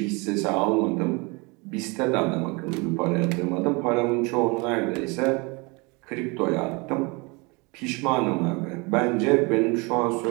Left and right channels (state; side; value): quieter; left; 28.0 dB